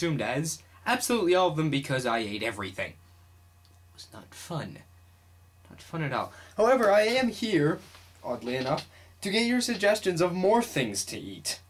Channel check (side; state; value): both; identical; correlation 1.00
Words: as absolutely all of them because I ate everything. It was not fun. Not fun at all. However, I am here, oddly enough, to get your suggestions of more things to eat.